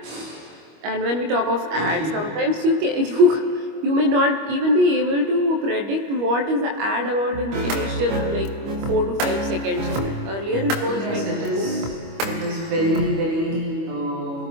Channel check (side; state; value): left; late; 25 ms